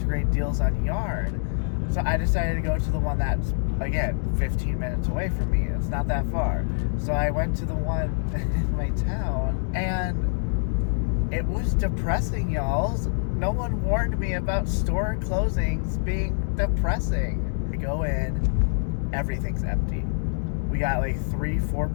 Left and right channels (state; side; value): silent; right; digital silence